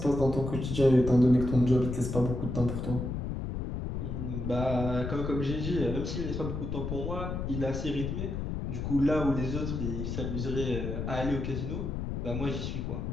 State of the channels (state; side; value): noise; left; rumble, 3 dB below the sound